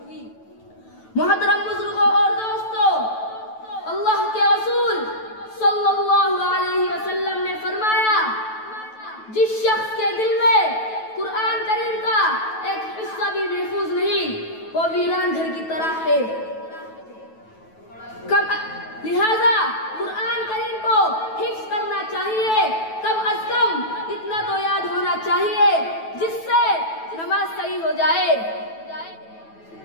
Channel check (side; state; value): right; late; 9.2 ms